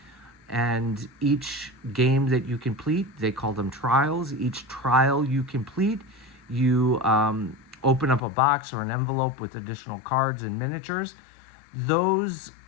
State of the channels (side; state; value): right; drops out; at 8.2 s